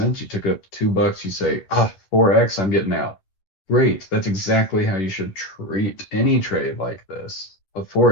you took it up to $2, you say, 4x, I'm getting out. Great. That's exactly how you should treat any trade like this. A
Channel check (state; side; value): late; right; 10 ms